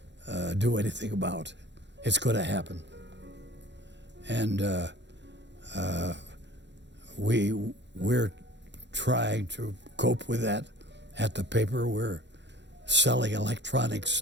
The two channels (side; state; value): left; late; 0.52 ms